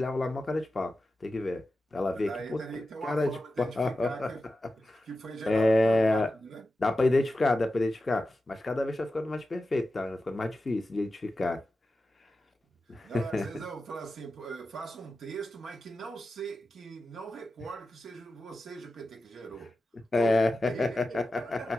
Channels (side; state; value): both; normal; correlation 0.92